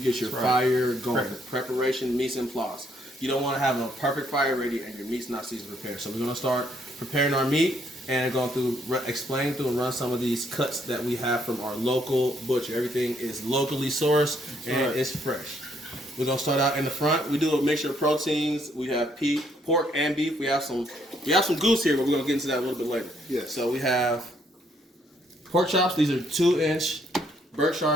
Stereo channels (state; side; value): normal; both; correlation 0.70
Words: your fire going. Preparation, mise en place. You don't want to have a perfect fire ready and your meat's not seasoned prepared. So we're going to start preparing our meat and going through, explain through and run some of these cuts that we have from our local butcher. Everything is locally sourced and it's fresh. We're going to start out in the front. We do a mixture of proteins. We have pork and beef. We have some goose here, but we're going to get into that a little bit later. Yes. So we have pork chops. These are 2-inch